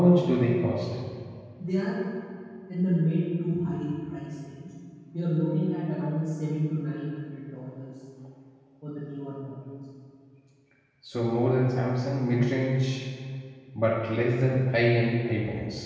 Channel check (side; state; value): both; identical; correlation 1.00